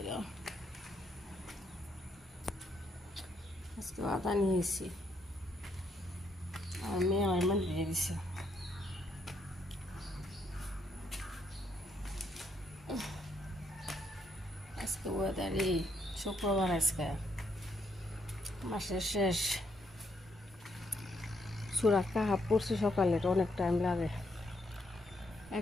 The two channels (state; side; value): normal; both; correlation 0.75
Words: তো আজকে আদা নিয়েছি আর মেয়ে আমার মানে দিয়ে দিছে। আজকে ওয়েদারই শুক্রবার, আজকে মাসের শেষ। সূরা কাহাফ পড়ছি সকালে, অনেক টাইম লাগে।